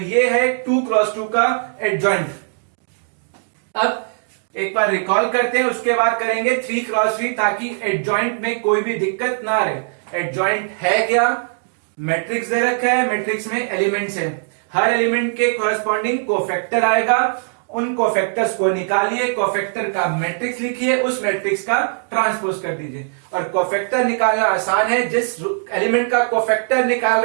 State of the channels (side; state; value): left; silent; digital silence